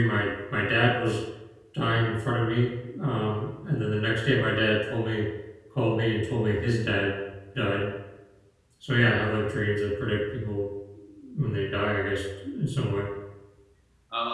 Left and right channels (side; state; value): both; identical; correlation 1.00